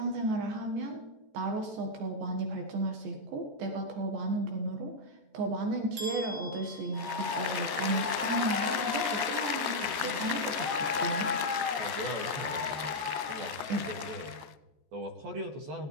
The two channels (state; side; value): late; left; 14 ms